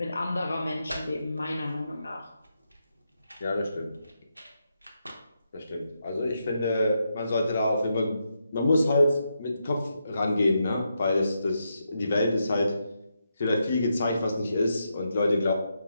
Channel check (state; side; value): inverted; both; correlation -0.83